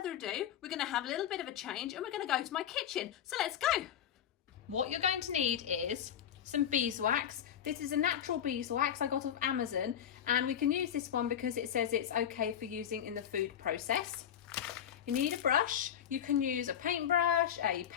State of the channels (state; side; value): quieter; right; 9.5 dB